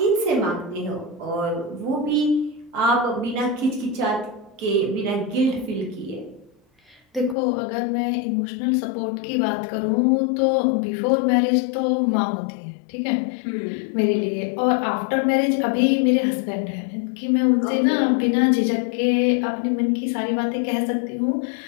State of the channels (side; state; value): right; drops out; at 7.4 s